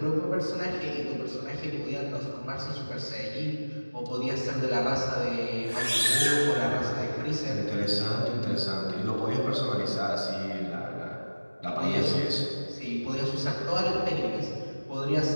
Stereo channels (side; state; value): both; inverted; correlation -1.00